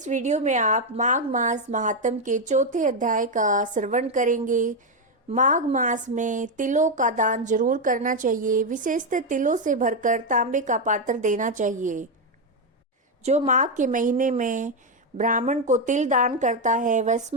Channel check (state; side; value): normal; both; correlation 0.05